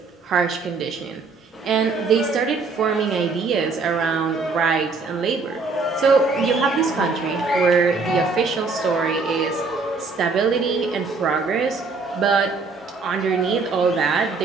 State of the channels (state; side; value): quieter; left; 4.3 dB